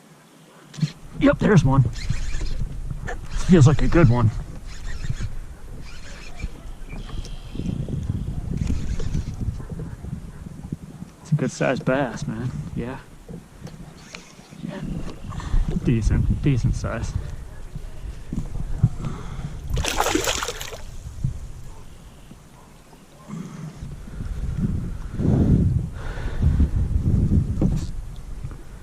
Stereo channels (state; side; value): identical; both; correlation 1.00